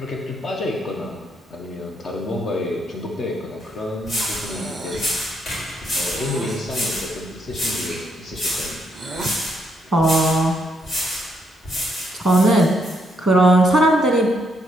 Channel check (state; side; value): normal; both; correlation 0.75